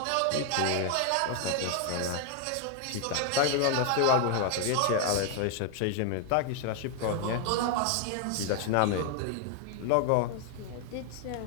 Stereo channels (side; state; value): both; different; correlation 0.00